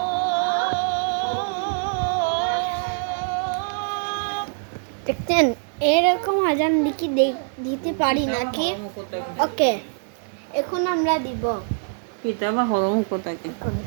দেখতেন এরকম আজান দিতে পারি নাকি? ওকে, এখন আমরা দিব কিতাবা হরম কোথাকে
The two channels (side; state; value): left; silent; 63 dB below the other